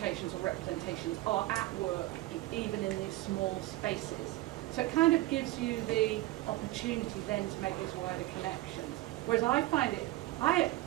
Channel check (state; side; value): quieter; left; 17.6 dB